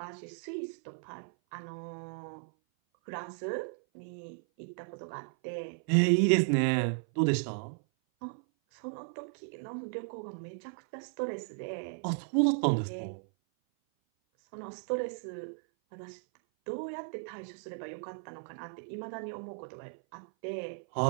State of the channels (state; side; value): silent; left; 55 dB below the other